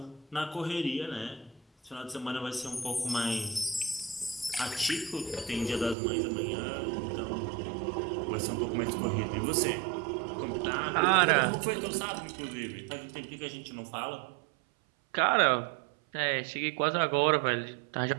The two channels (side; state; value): left; drops out; at 6.0 s